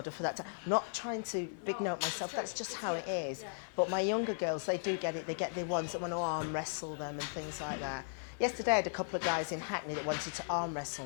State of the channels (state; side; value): silent; right; digital silence